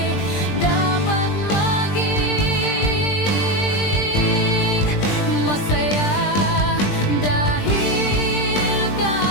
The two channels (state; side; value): late; right; 20 ms